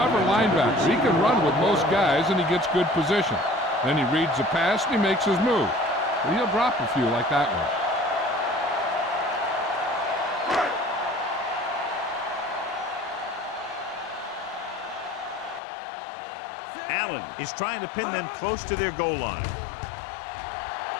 linebacker. He can run with most guys and he gets good position. Then he reads the pass and he makes his move. But he'll drop a few like that one. Allen is trying to pin them close to their goal line.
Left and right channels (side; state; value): right; drops out; at 15.6 s